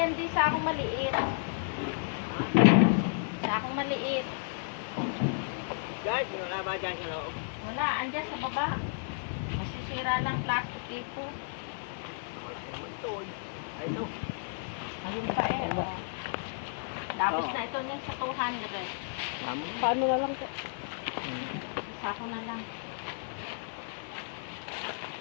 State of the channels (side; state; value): right; silent; 56 dB below the other